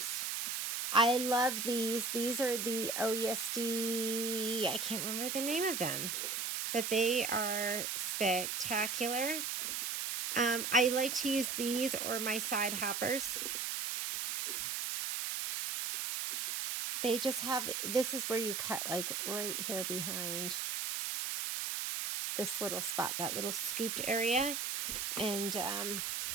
I love these. These are the OESD, I can't remember the name of them, but they are spectacular. I like to use these or my side hoppers. They just have, this is where you cut like right here behind this little spot, that little scooped area. And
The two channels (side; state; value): right; noise; hiss, 2 dB below the sound